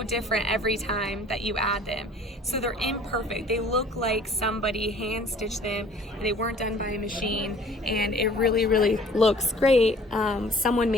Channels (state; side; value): normal; both; correlation 0.51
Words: different every time that you add them. So they're imperfect. They look like somebody hand stitched them and they weren't done by a machine, and it really, really looks great. Someone